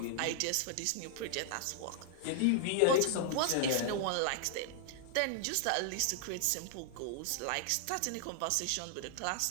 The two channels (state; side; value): different; both; correlation -0.01